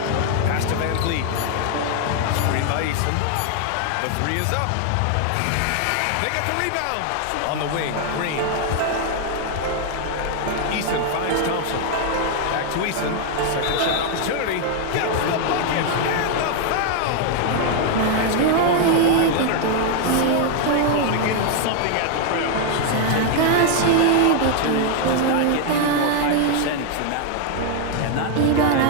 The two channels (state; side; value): different; both; correlation 0.00